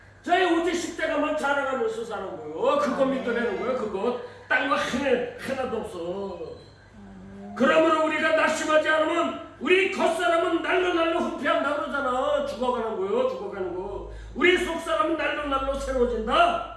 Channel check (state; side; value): identical; both; correlation 1.00